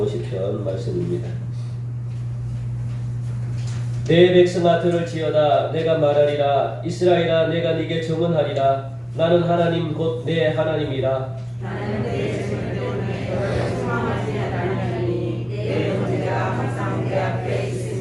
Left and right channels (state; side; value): identical; both; correlation 1.00